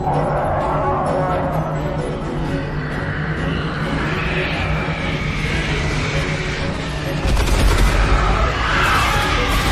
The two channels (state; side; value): identical; both; correlation 1.00